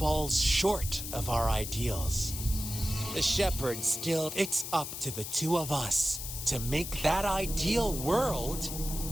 short of our ideals. The shepherd still, it's up to the two of us to make that ideal world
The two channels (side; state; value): left; noise; hiss, 7 dB below the sound